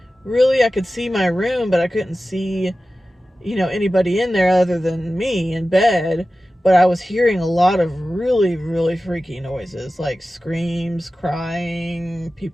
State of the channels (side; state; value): both; normal; correlation 0.95